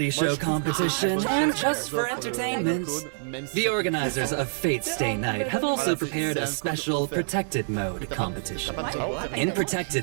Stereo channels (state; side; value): silent; left; 58 dB below the other